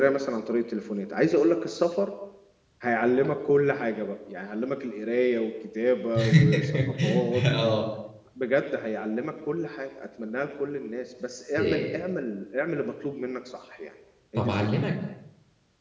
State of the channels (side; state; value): both; identical; correlation 1.00